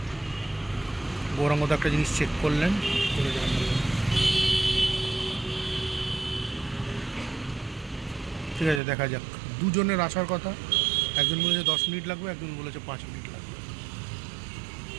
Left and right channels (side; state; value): left; drops out; at 8.8 s